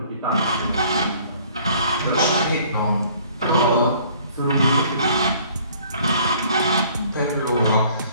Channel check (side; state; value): both; inverted; correlation -0.55